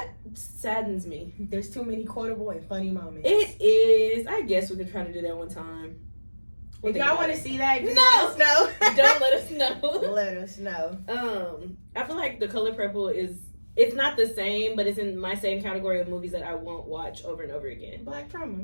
saddens me. There's too many quotable and funny moments. It is. I guess we could try to do that one time. If y'all want to see that, just No! let us know. Don't let us know. Let us know. I feel like the color purple it's not the same, but it's in my same category of movies that I won't watch over and over again. Black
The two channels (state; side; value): inverted; both; correlation -1.00